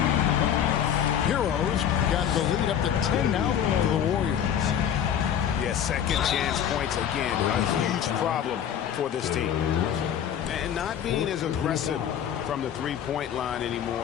Heroes got the lead up to 10 now for the Warriors. Yeah, second chance points again. A huge problem for this team. And not being as aggressive from the three-point line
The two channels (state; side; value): quieter; right; 9.3 dB